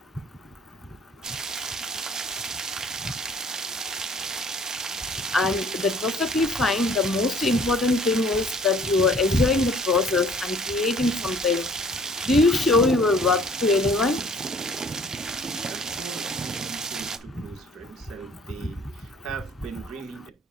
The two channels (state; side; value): normal; both; correlation 0.54